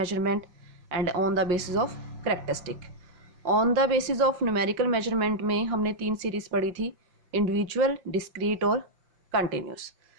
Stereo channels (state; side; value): late; left; 5.5 ms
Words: and on the basis of characteristic. On the basis of numerical measurement में हमने 3 सीरीज़ पढ़ी थी, इंडिविजुअल, डिस्क्रीट और कंटिन्यूस।